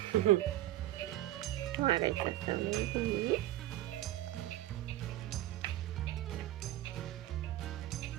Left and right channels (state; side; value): quieter; left; 14.7 dB